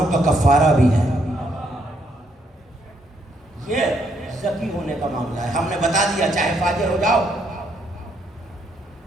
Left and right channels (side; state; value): both; normal; correlation 0.73